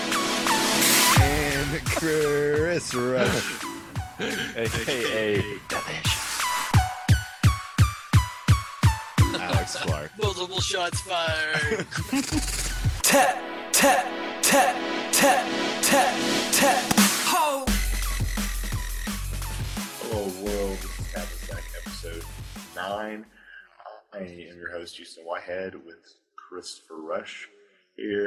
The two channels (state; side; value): identical; both; correlation 1.00